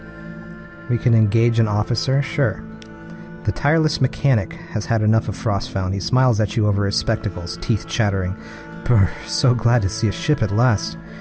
We can engage an officer? Sure. The tireless mechanic has had enough of Frostfound. He smiles at you over his spectacles, teeth chattering. Brr, so glad to see a ship at last.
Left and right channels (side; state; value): both; identical; correlation 1.00